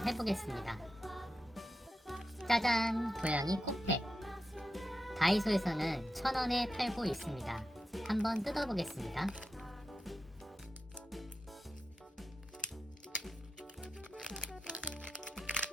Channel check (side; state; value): both; normal; correlation 0.89